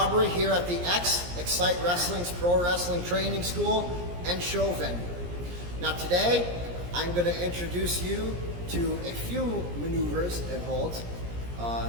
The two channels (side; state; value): left; late; 17 ms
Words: here at the XCITE Wrestling's Pro Wrestling Training School and Show Venue. Now today, I'm going to introduce you to a few maneuvers and holds.